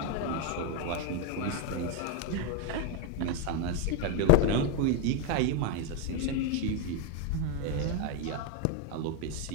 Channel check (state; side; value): different; both; correlation 0.02